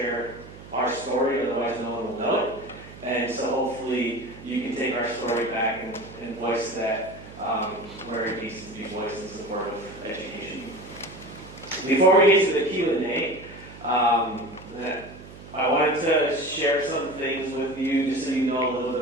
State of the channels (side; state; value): right; noise; hum, 17 dB below the sound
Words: our story, otherwise no one will know it. And so hopefully you can take our story back and voice that where it needs to be voiced in support of education. Before we get to the Q&A, I wanted to share some things with you just so you know a little